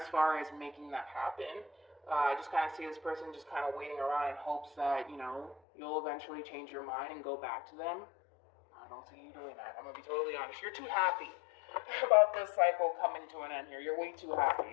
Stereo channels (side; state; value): right; drops out; at 5.6 s